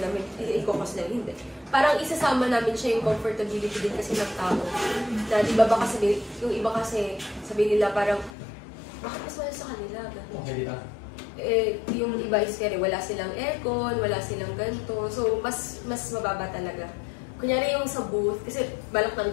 namin, i-cost namin, hindi. Parang isasama namin siya yung comfortability din kasi ng tao. Na di ba baka sabihin, yung iba kasi sabihin nila parang, bakit mas mahal sa kanila? Yung iba is kaya wala silang aircon, wala silang ganito. So, mas mababa talaga. Kunyari yung sa booth, kasi balak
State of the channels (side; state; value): right; drops out; at 8.3 s